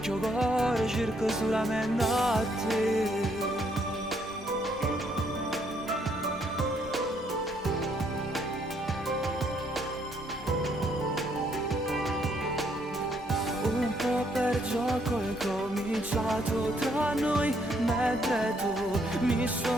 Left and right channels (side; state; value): both; normal; correlation 0.70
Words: il cuore cerca solamente a te. Un po' per gioco è cominciato tra noi, mentre tu mi